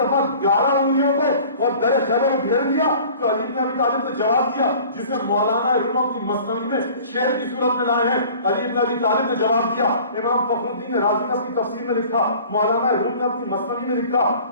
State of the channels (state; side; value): inverted; both; correlation -0.46